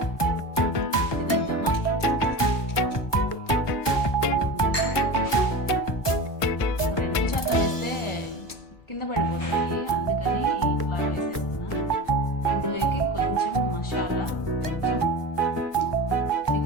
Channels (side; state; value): right; late; 1.2 ms